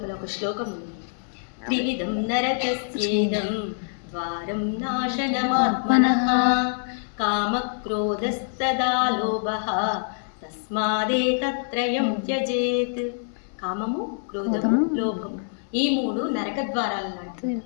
ఒక శ్లోకం ఉంది. త్రివిధం నరకస్యేదం వారం నాశనమాత్మనః కామక్రోధస్తదా లోభః తస్మాదేతత్రయం త్యజేత్. కామము, క్రోధము, లోభము ఈ మూడు నరక ద్వారాలు లాంటివి.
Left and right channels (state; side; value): silent; right; 62 dB below the other